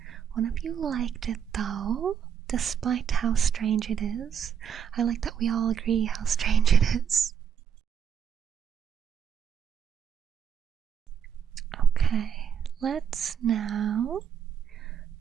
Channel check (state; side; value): quieter; left; 8.1 dB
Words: one of you liked it though, despite how strange it is. I like that we all agree how strange it is. Okay, let's now